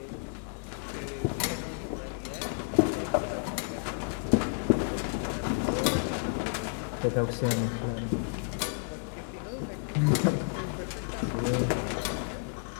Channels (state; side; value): silent; right; 57 dB below the other